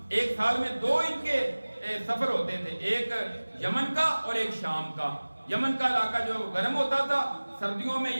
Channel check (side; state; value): both; inverted; correlation -1.00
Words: ایک سال میں 2 ان کے سفر ہوتے تھے، ایک یمن کا اور ایک شام کا۔ یمن کا علاقہ جو گرم ہوتا تھا، سردیوں میں